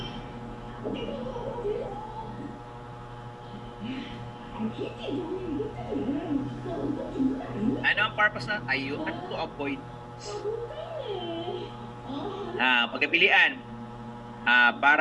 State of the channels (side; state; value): both; identical; correlation 1.00